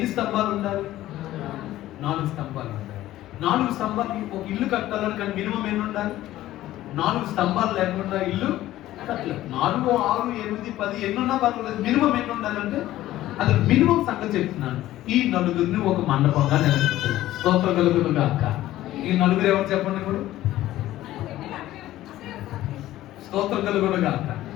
స్తంభాలు ఉండాలి? 4 స్తంభాలు ఉండాలి. 4 స్తంభాలు ఒక ఇల్లు కట్టాలని కానీ మినిమం ఎన్ని ఉండాలి? 4 స్తంభాలు లేకుండా ఇల్లు కట్టలేదు. 4, 6, 8, 10 ఎన్నున్నా పర్వాలేదు, మినిమం ఎన్ని ఉండాలంటే అది మినిమం సంగతి చెప్తున్నాను. ఈ నలుగురిని ఒక మండపంగా నిలబెడుతున్నాను. స్తోత్రం కలుగును గాక. ఈ నలుగురు ఎవరు చెప్పండి ఇప్పుడు? స్తోత్రం కలుగును గాక.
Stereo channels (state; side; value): quieter; right; 14.7 dB